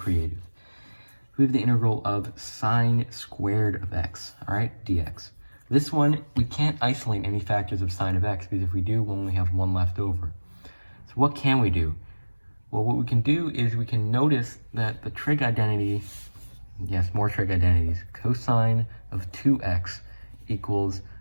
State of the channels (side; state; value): both; inverted; correlation -1.00